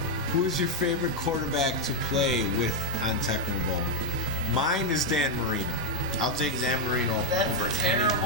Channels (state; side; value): normal; both; correlation 0.00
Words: Who is your favorite quarterback to play with on Tecmo Bowl? Mine is Dan Marino. I'll take Dan Marino That's over a any terrible